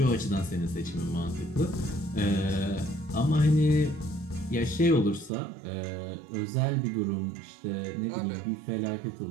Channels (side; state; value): left; drops out; at 5.3 s